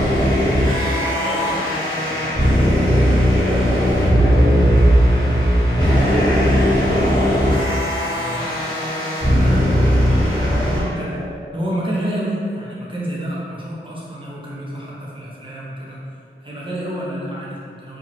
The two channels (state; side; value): normal; both; correlation 0.82